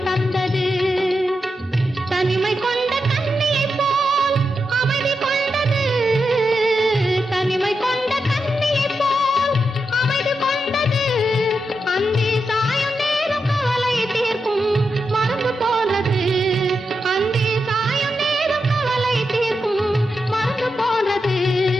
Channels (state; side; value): normal; both; correlation 0.87